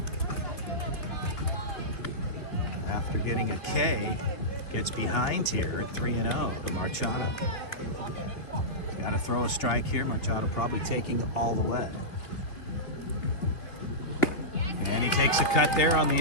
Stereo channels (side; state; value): right; late; 2.9 ms